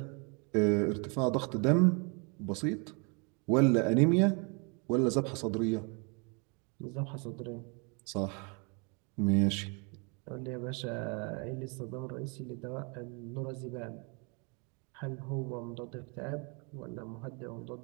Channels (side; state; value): left; quieter; 33.8 dB